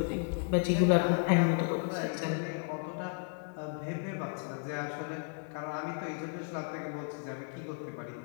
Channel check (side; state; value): right; quieter; 39.4 dB